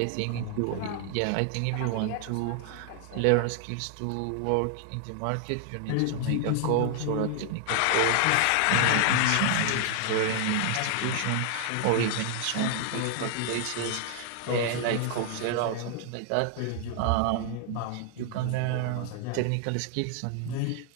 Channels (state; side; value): different; both; correlation 0.00